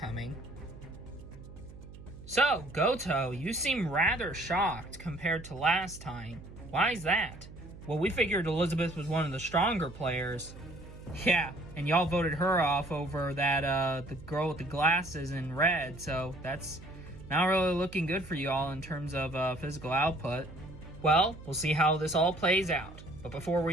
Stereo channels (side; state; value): right; noise; hum, 16 dB below the sound